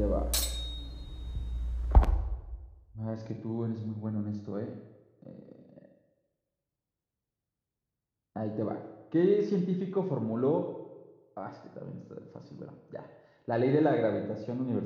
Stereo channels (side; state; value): both; identical; correlation 1.00